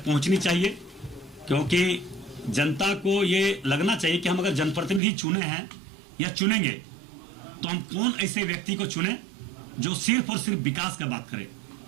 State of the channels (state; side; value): drops out; left; at 5.0 s